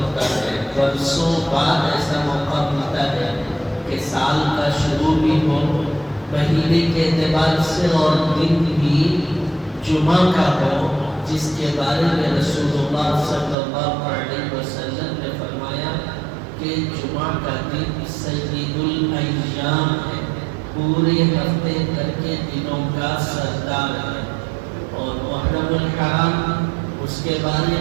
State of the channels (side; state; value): left; drops out; at 13.6 s